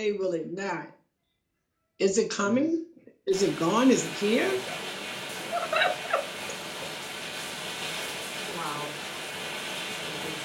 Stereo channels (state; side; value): identical; both; correlation 1.00